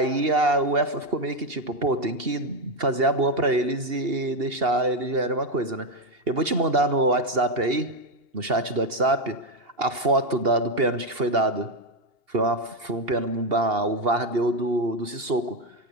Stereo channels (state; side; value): late; left; 2.8 ms